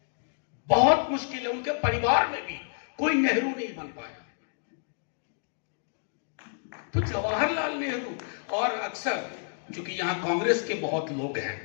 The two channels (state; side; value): silent; right; digital silence